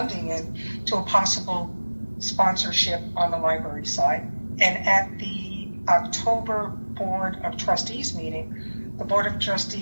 in to a possible sponsorship on the library side. And at the October Board of Trustees meeting, the Board of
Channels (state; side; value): inverted; both; correlation -1.00